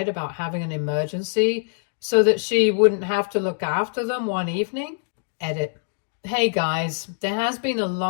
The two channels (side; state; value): right; silent; digital silence